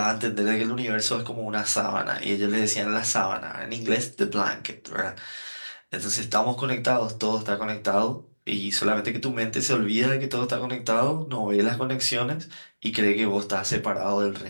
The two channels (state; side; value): inverted; both; correlation -1.00